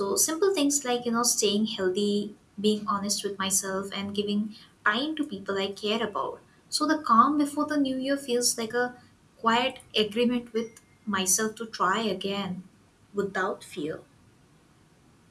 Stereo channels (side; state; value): both; identical; correlation 1.00